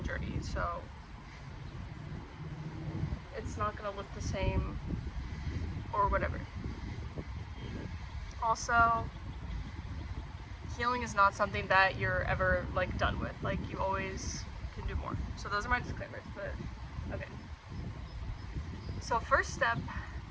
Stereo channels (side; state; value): both; identical; correlation 1.00